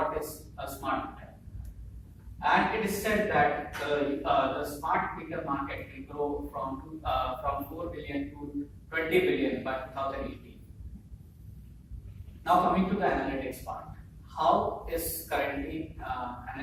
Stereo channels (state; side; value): identical; both; correlation 1.00